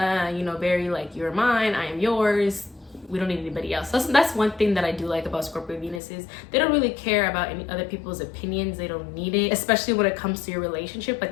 know, very like, you're mine, I am yours, we don't need anybody else. That's one thing that I do like about Scorpio Venus, is they don't really care about any other people's opinions. They don't need it, especially when it comes to your relationship.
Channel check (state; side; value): drops out; right; at 6.0 s